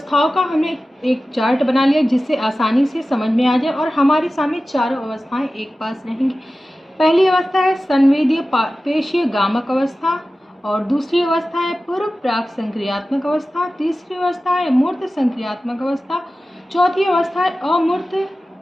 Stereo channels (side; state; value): both; normal; correlation 0.95